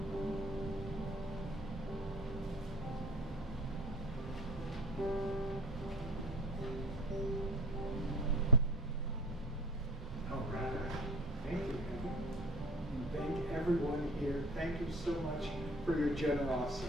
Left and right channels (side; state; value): both; normal; correlation 0.43